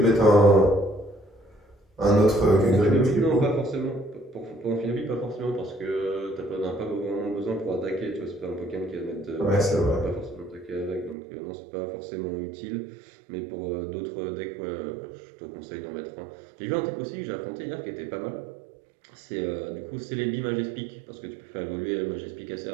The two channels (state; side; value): drops out; left; at 11.2 s